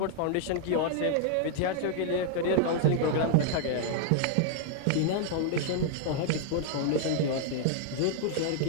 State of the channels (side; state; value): both; different; correlation 0.00